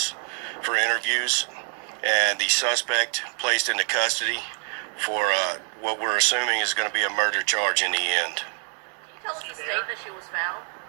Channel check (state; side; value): quieter; left; 38.4 dB